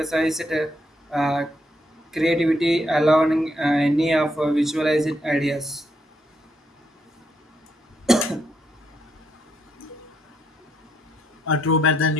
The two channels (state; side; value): normal; both; correlation 0.76